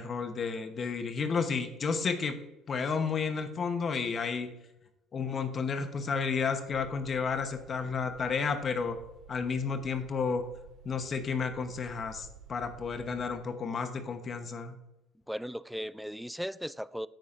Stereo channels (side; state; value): right; quieter; 4.7 dB